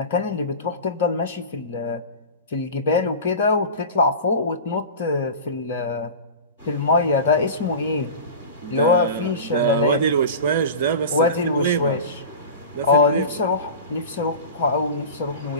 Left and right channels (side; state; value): both; inverted; correlation -0.32